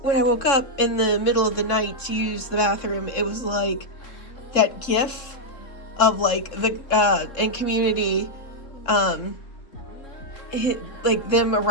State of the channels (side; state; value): right; late; 3.7 ms